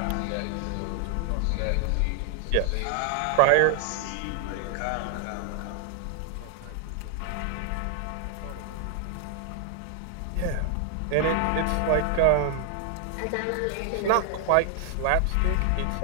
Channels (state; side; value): different; both; correlation 0.00